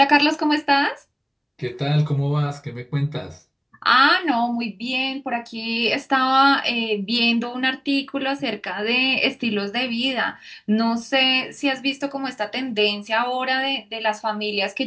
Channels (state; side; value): identical; both; correlation 1.00